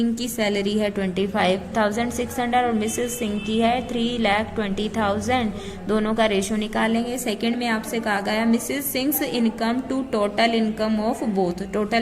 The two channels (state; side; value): identical; both; correlation 1.00